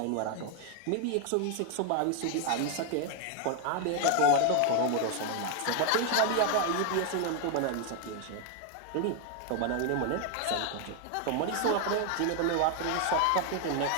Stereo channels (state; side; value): different; both; correlation 0.01